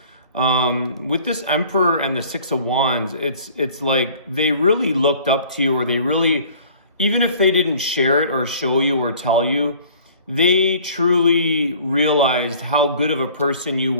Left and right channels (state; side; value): inverted; both; correlation -0.50